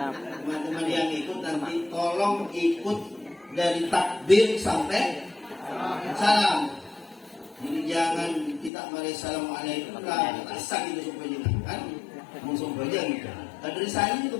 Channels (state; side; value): drops out; right; at 8.7 s